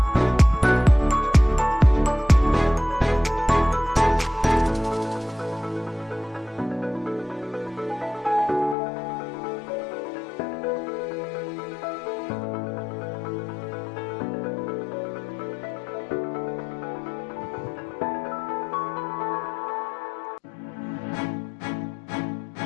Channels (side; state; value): right; drops out; at 8.8 s